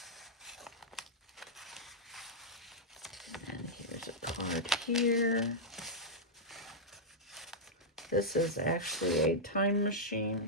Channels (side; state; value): both; normal; correlation -0.07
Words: And here's a card here. This is actually a time